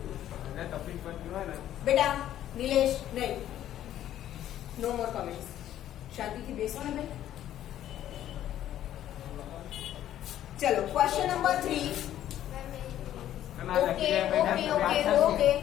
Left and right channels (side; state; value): right; quieter; 12.0 dB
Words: बेटा। नीलेश नहीं, नो मोर कमेंट्स। शांति થી બેસો ને ભાઈ। चलो question number 3। Okay okay okay okay,